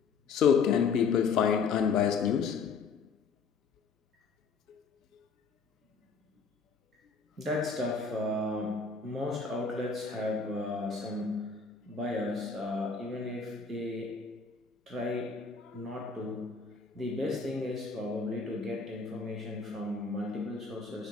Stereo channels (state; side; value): quieter; right; 5.0 dB